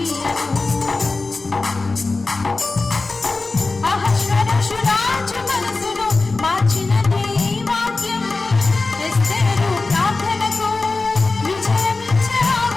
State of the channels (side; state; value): right; quieter; 3.6 dB